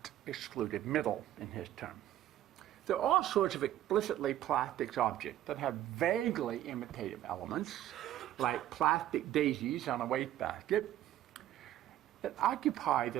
excluded middle in his term. There are all sorts of explicitly plastics objects that have vaguely imitative elements, like plastic daisies on a wastebasket, that occupy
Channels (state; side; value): quieter; left; 12.7 dB